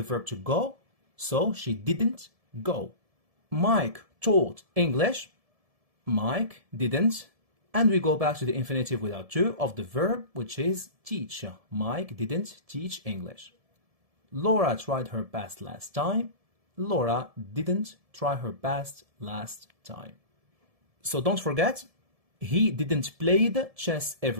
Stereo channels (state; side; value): late; left; 1.7 ms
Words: verb to go, so she didn't go. Mike taught English. Mike didn't. And we go back to the infinitive without to of the verb, which is teach. Mike didn't teach English. Laura tried her best last time. Laura didn't try her best last time. So don't forget, he didn't play the chess